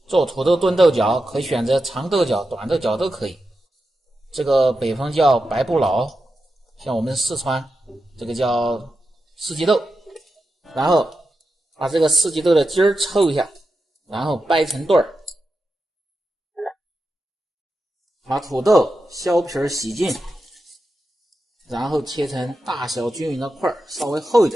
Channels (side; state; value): both; normal; correlation 0.89